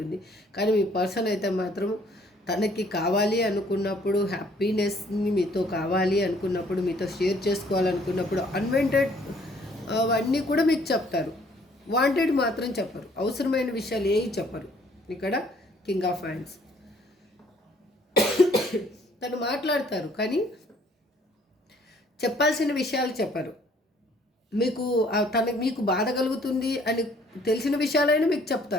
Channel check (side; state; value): both; normal; correlation 0.61